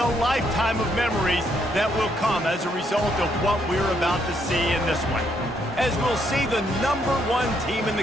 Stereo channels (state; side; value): normal; both; correlation 0.73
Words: lifetime of memories that will come as a result of what we're about to see in this one. As we'll see the #1 team in